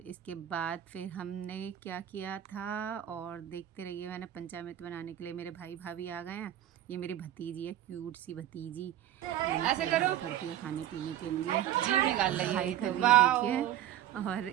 इसके बाद फिर हमने क्या किया था और देखते रहिए। मैंने पंचामृत बनाने के लिए मेरे भाई भाभी आ गए हैं। ये मेरी भतीजी है, क्यूट सी भतीजी। ऐसे करो करती है खाने पीने के लिए, जीभ निकाल रही है कर रही है देखिए। और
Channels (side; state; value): left; quieter; 12.4 dB